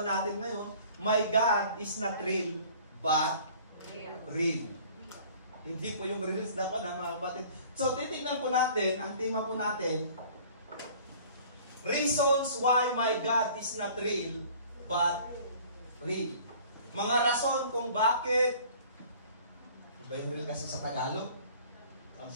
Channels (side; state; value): both; inverted; correlation -0.50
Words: natin ngayon, My God is not real, but real. Hindi po yung reels na po na mga kapatid. So, titignan po natin, ang tema po natin, reasons why my God is not real, but real. Mga rason kung bakit. Ano ba yung real kasi sa Tagalog?